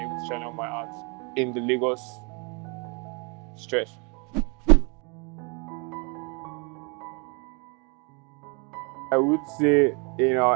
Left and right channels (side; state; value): left; quieter; 33.1 dB